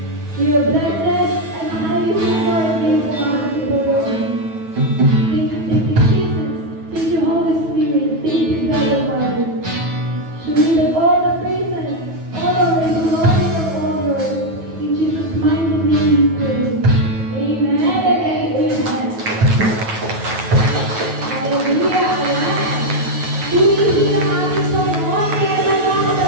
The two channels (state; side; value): late; left; 9.3 ms